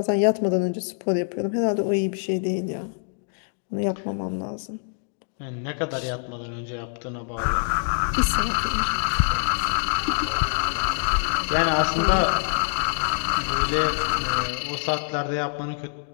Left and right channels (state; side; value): silent; right; digital silence